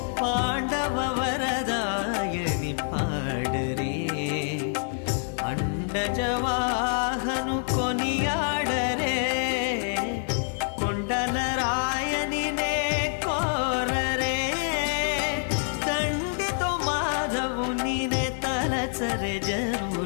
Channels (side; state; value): right; silent; digital silence